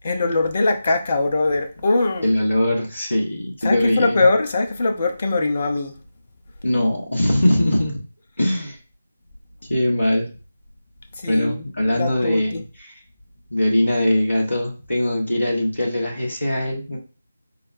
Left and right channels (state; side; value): inverted; both; correlation -0.93